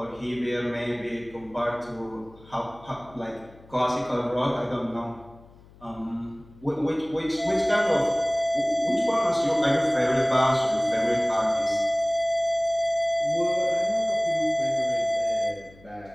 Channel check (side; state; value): left; noise; hum, 24 dB below the sound